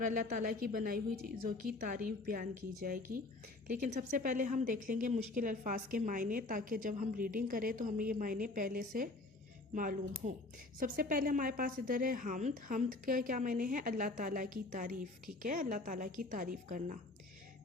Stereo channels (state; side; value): quieter; right; 3.1 dB